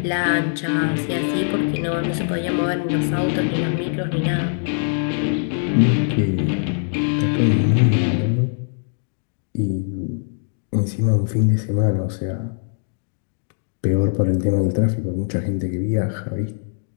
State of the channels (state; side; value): silent; right; digital silence